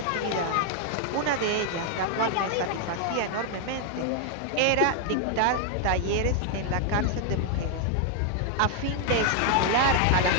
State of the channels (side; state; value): both; different; correlation 0.00